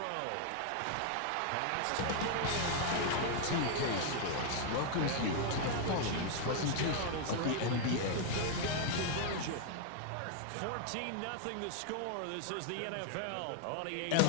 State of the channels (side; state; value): both; different; correlation 0.00